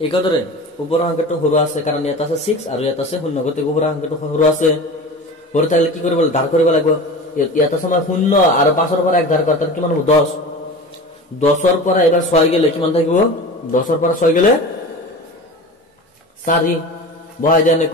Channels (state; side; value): normal; both; correlation 0.33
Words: ওপৰৰ সংখ্যাটো সৰু আছে কাৰণ ইয়াত আছে 6 আৰু ইয়াত আছে 0 গতিকে ওপৰৰ সংখ্যাটো সৰু আছে সৰু থাকিলে কি কৰিব ধাৰ কৰিব লাগিব ইয়াত আছে আমাৰ 0 আৰু 5 ৰ পৰা 1 ধাৰ কৰা তাহলে কিমান হ'ব 10 ৰ পৰা এবাৰ 6 গেলে কিমান থাকিব 10 ৰ পৰা 6 গেলে 4 বহাই যায়